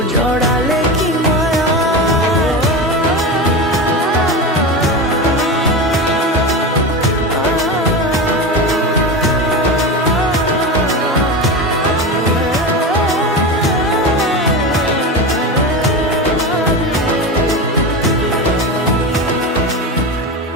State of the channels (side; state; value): both; normal; correlation 0.22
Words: জড়ালে কি মায়া